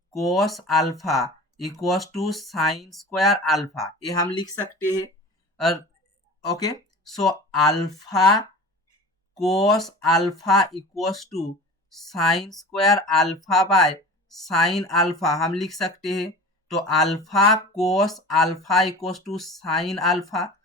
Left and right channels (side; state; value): both; normal; correlation 0.37